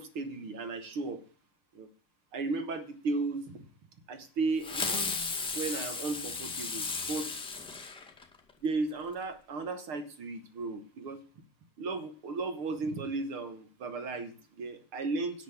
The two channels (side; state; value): both; normal; correlation 0.32